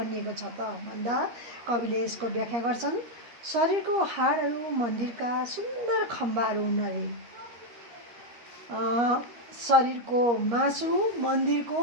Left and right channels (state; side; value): late; left; 13 ms